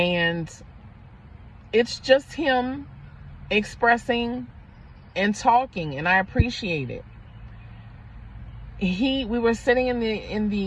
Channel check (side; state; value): both; identical; correlation 1.00